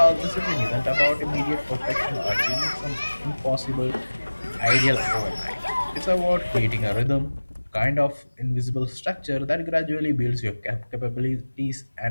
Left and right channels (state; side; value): inverted; both; correlation -1.00